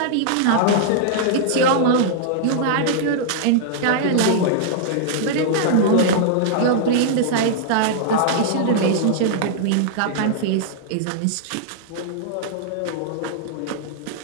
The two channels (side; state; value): both; different; correlation -0.01